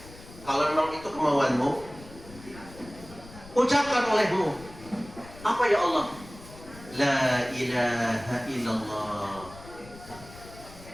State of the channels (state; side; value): noise; left; rumble, 18 dB below the sound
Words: ucapkan olehmu. Apa ya Allah? La ilaha illallah.